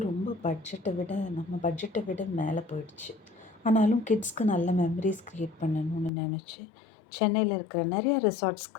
ரொம்ப பட்ஜெட்டை விட மேலே போயிடுச்சு. ஆனாலும் கிட்ஸ்க்கு நல்ல மெமரிஸ் க்ரியேட் பண்ணணும்னு நினச்சி சென்னையில் இருக்கிற நிறைய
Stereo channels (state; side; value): drops out; right; at 6.1 s